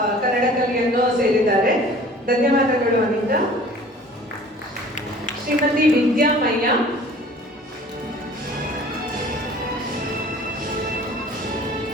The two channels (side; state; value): both; normal; correlation 0.48